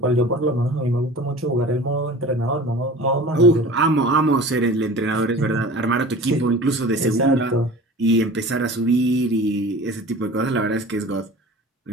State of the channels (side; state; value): both; normal; correlation 0.40